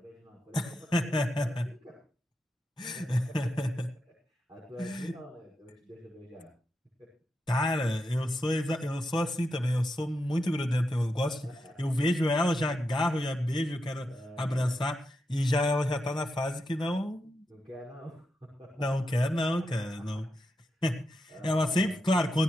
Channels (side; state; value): both; normal; correlation 0.87